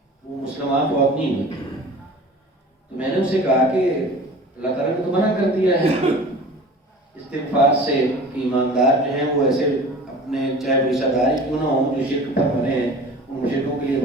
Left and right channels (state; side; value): normal; both; correlation 0.41